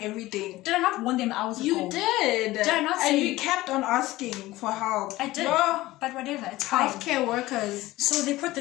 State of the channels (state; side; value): quieter; right; 17.8 dB